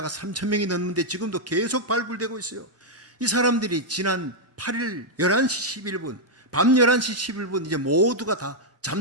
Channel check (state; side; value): normal; both; correlation -0.03